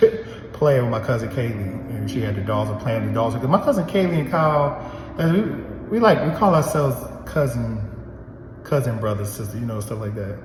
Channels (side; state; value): both; identical; correlation 1.00